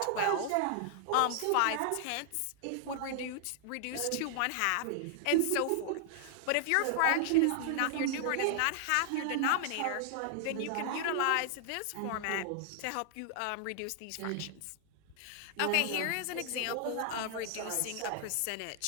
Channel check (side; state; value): both; different; correlation -0.01